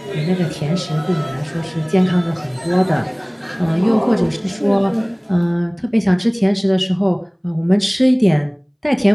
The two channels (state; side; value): identical; both; correlation 1.00